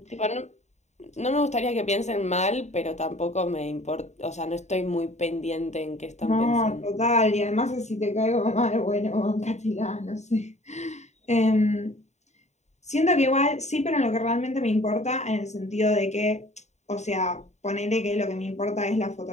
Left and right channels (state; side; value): late; right; 0.33 ms